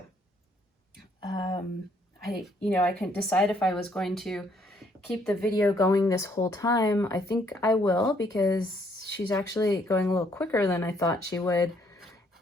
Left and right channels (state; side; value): normal; both; correlation 0.67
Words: I couldn't decide if I was going to keep the video going this whole time. I think I will, because she's actually going a little quicker than I thought she would.